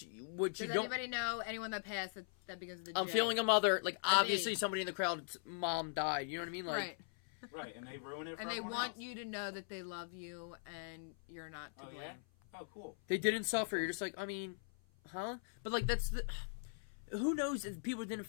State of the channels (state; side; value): silent; right; 51 dB below the other